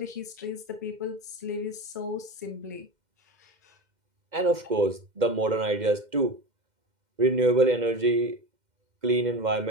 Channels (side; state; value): left; late; 2.1 ms